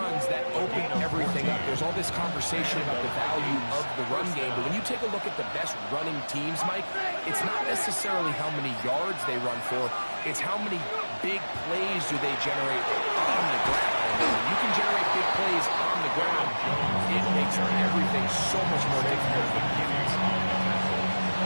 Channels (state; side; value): inverted; both; correlation -1.00